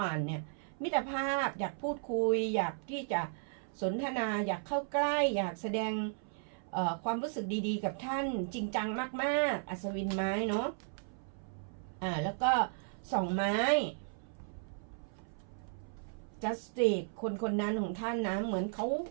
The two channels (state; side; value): silent; left; 54 dB below the other